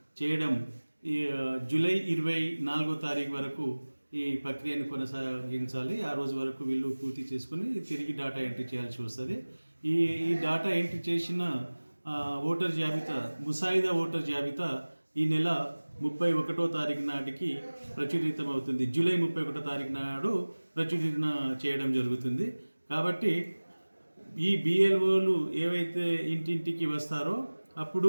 చేయడం ఈ జూలై 24వ తారీఖు వరకు ఈ ప్రక్రియను కొనసాగించాలి. ఆ రోజు వరకు వీళ్ళు పూర్తి చేసుకొని తిరిగి డేటా ఎంట్రీ చేయాల్సి వస్తుంది. ఈ డేటా ఎంట్రీ చేసిన ఓటర్ జాబితా, ముసాయిదా ఓటర్ జాబితా ఈ నెల 31వ తారీఖు నాటికి ప్రచురితం అవుతుంది. జూలై 31వ తారీఖు నాడు ప్రచురణ చేయడం జరుగుతుంది. కాబట్టి ఈ బిఎల్ఓలు ఏవైతే ఇంటింటికి వస్తారో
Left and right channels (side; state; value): both; inverted; correlation -1.00